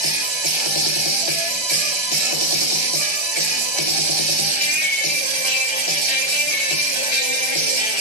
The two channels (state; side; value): late; left; 1.3 ms